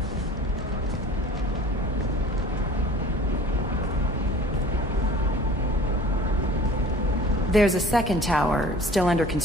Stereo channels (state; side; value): normal; both; correlation 0.45